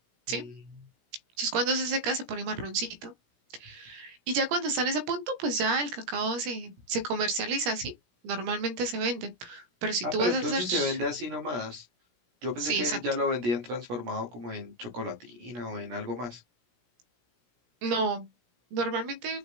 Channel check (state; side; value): late; left; 17 ms